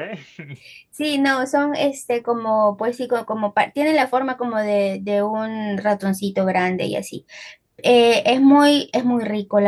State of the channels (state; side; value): identical; both; correlation 1.00